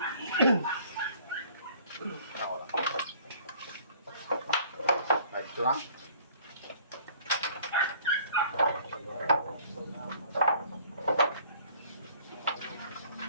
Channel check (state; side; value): inverted; both; correlation -0.54